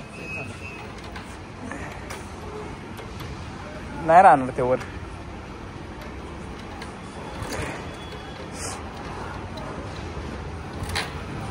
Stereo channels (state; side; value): identical; both; correlation 1.00